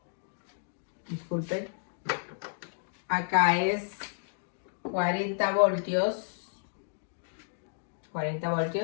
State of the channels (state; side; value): silent; right; digital silence